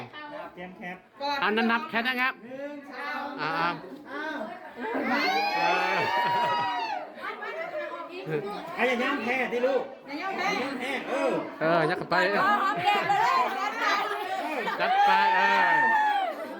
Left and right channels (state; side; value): identical; both; correlation 1.00